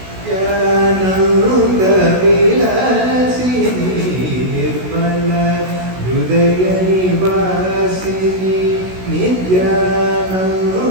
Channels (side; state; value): left; late; 16 ms